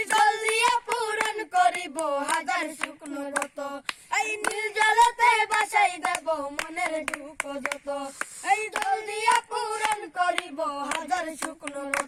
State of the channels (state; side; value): identical; both; correlation 1.00